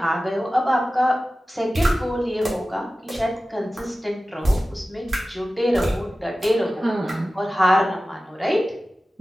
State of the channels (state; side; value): normal; both; correlation 0.95